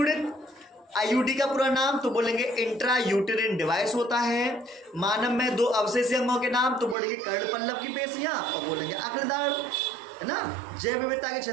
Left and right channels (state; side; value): drops out; left; at 7.0 s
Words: आईयूडी का पूरा नाम तो बोलेंगे इंट्रा यूटेरिन डिवाइस होता है। मानव में 2 अवशेषी अंगों के नाम तो बोलेंगे कर्णपल्लव की पेशियां और बोलेंगे अग्रदाढ़, है ना। जैव विविधता की